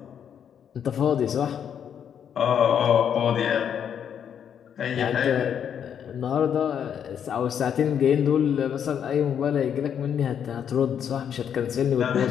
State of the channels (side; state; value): right; quieter; 8.5 dB